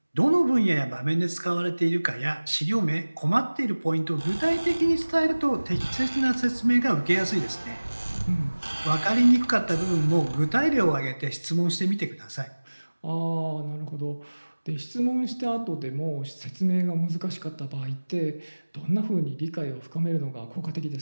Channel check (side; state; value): both; inverted; correlation -1.00